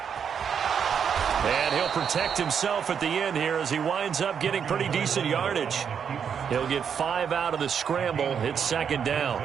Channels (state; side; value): quieter; left; 7.4 dB